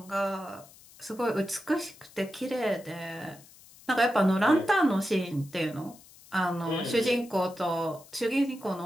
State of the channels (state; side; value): noise; left; hiss, 23 dB below the sound